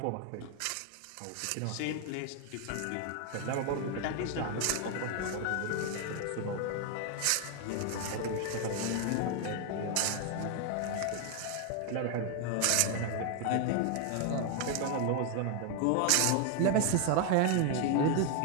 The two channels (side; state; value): both; different; correlation 0.00